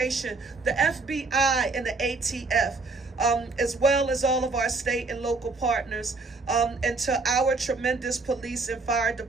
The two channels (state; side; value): quieter; left; 3.7 dB